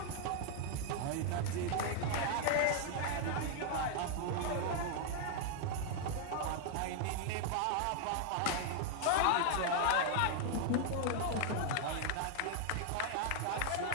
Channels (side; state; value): both; different; correlation 0.00